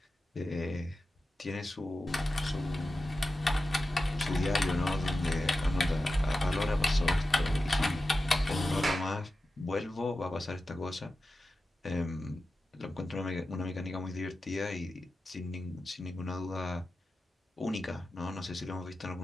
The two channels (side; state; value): both; normal; correlation 0.93